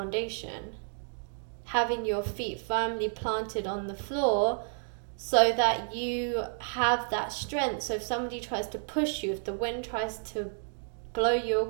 having your feet firmly planted on the floor so that you have that strength. So if somebody tries to push you, if the wind tries to blow you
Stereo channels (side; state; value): left; silent; digital silence